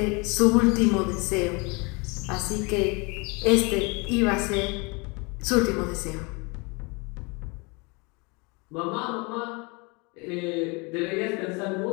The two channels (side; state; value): right; quieter; 29.2 dB